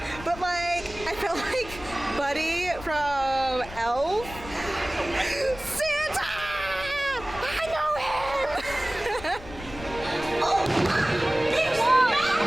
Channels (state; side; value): noise; left; rumble, 15 dB below the sound